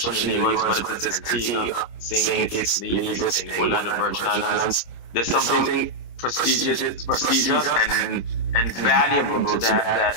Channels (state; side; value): late; right; 25 ms